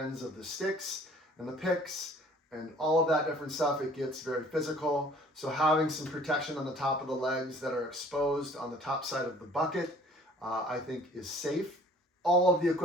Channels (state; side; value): normal; both; correlation 0.53